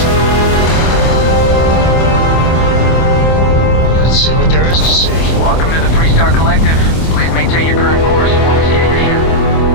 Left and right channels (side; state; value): right; late; 25 ms